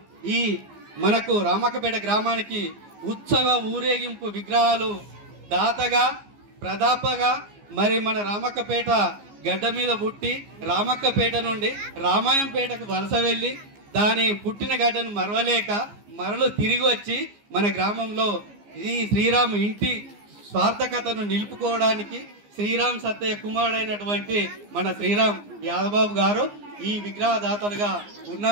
ఈ మనకు రామక్కపేట గ్రామానికి ఉత్సవ ఊరేగింపు విగ్రహాలు దాతగా ప్రదాపగా మరి మన రామక్కపేట గడ్డ మీద పుట్టి రామక్కపేట నుండి రామాయంపేటకు వలస వెళ్ళి దాని పుట్టిన గడ్డను మరవలేక మరలు తిరిగి వచ్చి మన గ్రామంలో ఈ శ్రీరాము ఇంటి స్వార్థకతను నిలుపుకోవడానికి శ్రీరామ్ సత్తయ్య కుమారుడైనటువంటి మన శ్రీరామ్ యాదబాబు గారు ఈ విగ్రహదాతలుగా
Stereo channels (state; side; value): late; left; 15 ms